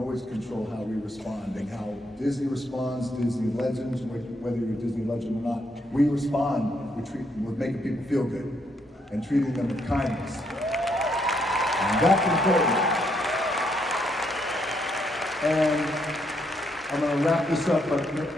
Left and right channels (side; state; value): both; normal; correlation 0.75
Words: control how we respond and how Disney responds, Disney legends, whether you're a Disney legend or not, we respond, we're making people feel good and treating them with kindness. And that's important. And I'm going to wrap this up, but